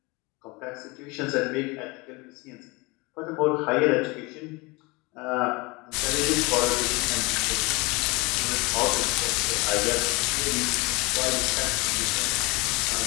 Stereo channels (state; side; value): quieter; right; 25.5 dB